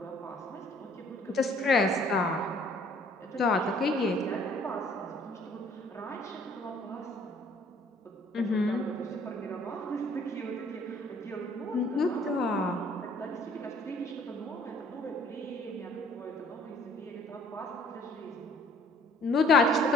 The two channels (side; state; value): both; normal; correlation 0.58